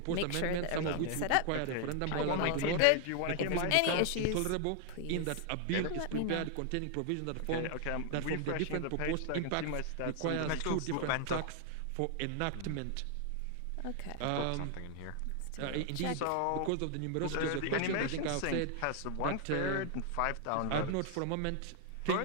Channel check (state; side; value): different; both; correlation 0.00